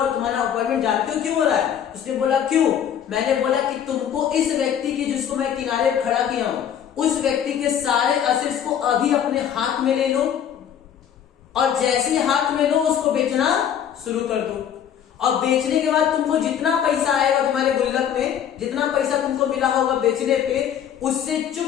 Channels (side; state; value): right; quieter; 9.1 dB